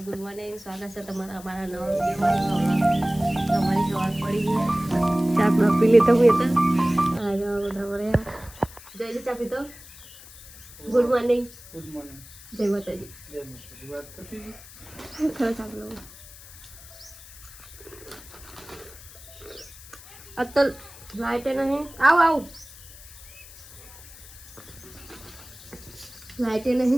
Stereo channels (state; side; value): noise; left; hiss, 18 dB below the sound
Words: ગુડ મોર્નિંગ, સ્વાગત છે તમારા અમારા નવા વિડીયોમાં. તમારી સવાર પડી ગઈ, ચા પી લીધો હું તો આજે બધા મળ્યા. જય ચા પીતો. Good morning. Good morning. જય માતાજી. જય માતાજી. ખરો ચા પી લો. અત્તલ લાઈટ નહીં. આવ લાઈટ